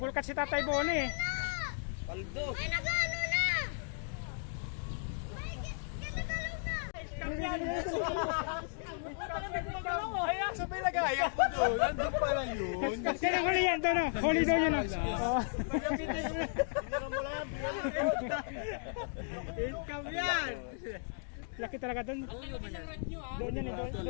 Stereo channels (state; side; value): silent; right; digital silence